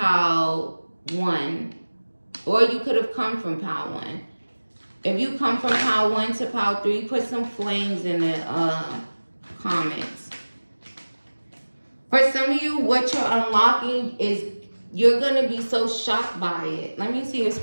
1. Or you could have come from pile 1. If you come from pile 1 to pile 3, put some flames in the comments. For some of you, what you're unlocking is you're going to be so shocked by it. Let me see if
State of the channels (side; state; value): both; inverted; correlation -1.00